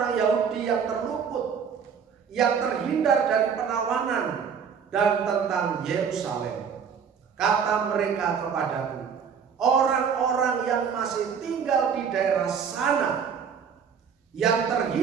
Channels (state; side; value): quieter; left; 6.8 dB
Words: Yahudi yang terluput, yang terhindar dari penawanan, dan tentang Yerusalem. Kata mereka kepadaku, orang-orang yang masih tinggal di daerah sana, yang